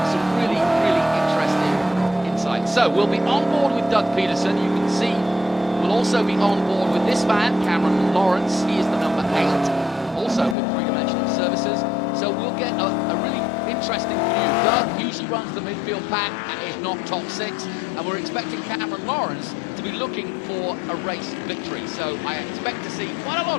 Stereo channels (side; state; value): right; drops out; at 10.6 s